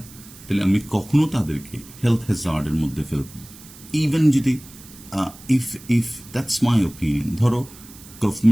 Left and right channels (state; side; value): noise; right; hiss, 20 dB below the sound